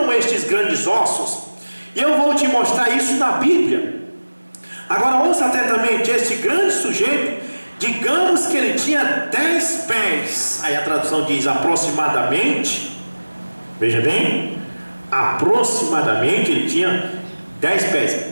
estes grandes ossos, e eu vou te mostrar isso na Bíblia. Agora ouça atentamente: este grande sujeito, digamos que ele tinha 10 pés. Aí a tradução diz aproximadamente. Veja bem, aproximadamente ele tinha 10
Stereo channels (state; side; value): inverted; both; correlation -1.00